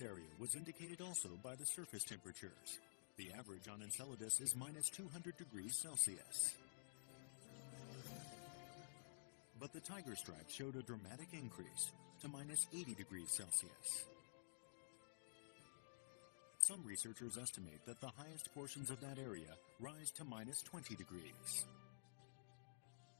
area was indicated also by the surface temperatures. The average on Enceladus is minus 200 degrees Celsius. But the tiger stripe showed a dramatic increase to minus 80 degrees Celsius. Some researchers estimate that the highest portions of that area rise to minus 20 degrees.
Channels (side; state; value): right; silent; digital silence